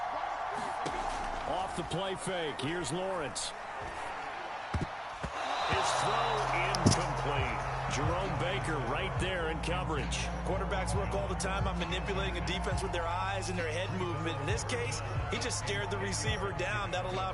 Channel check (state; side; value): identical; both; correlation 1.00